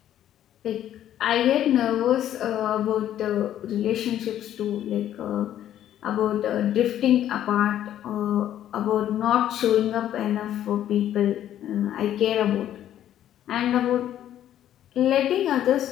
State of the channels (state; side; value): quieter; right; 11.4 dB